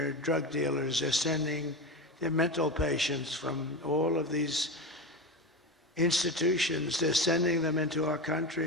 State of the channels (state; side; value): normal; both; correlation 0.21